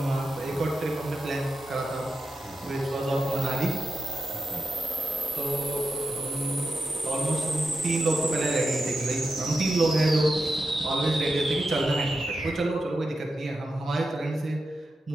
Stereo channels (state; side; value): normal; both; correlation 0.89